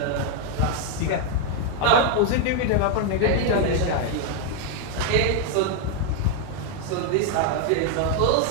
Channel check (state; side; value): different; both; correlation 0.00